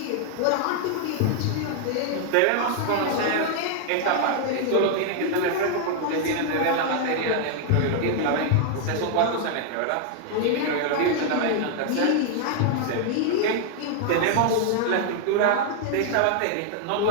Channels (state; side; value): different; both; correlation 0.00